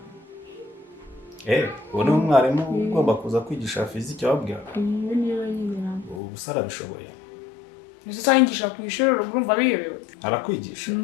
Uwo ni umwarimu ugomba kuza kwigisha physique wabwira? Ibi niyo yimira. Ubuse arabishoboye. Ese sanyigisha ku ishuri urumva biyobewe. Arakwigisha?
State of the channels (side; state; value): right; drops out; at 6.2 s